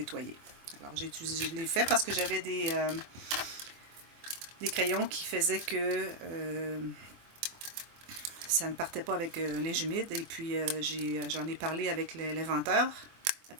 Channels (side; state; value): left; late; 24 ms